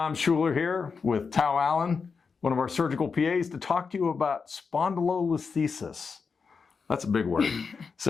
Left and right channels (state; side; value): quieter; right; 5.3 dB